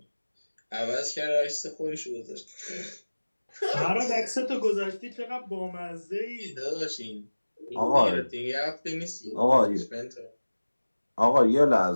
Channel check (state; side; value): inverted; both; correlation -1.00